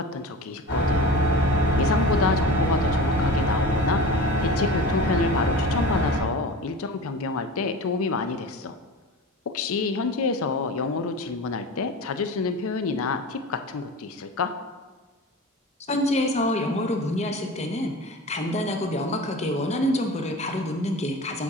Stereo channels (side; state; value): both; normal; correlation 0.33